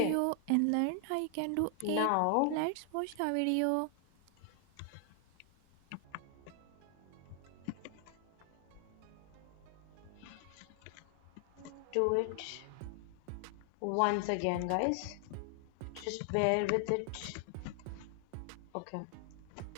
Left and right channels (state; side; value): different; both; correlation 0.00